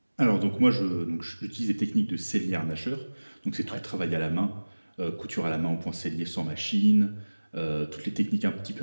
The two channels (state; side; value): inverted; both; correlation -1.00